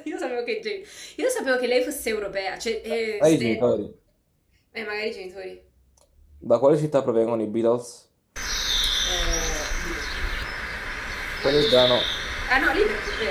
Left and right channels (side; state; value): both; identical; correlation 1.00